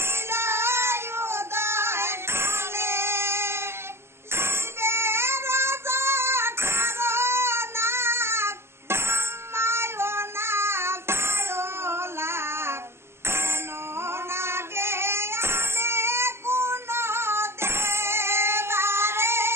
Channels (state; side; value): late; left; 0.12 ms